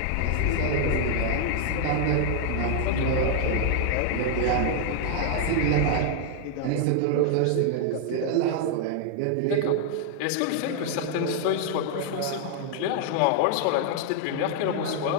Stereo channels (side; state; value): both; different; correlation 0.00